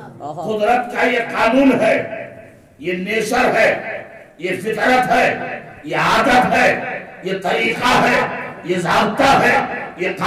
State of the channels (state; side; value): identical; both; correlation 1.00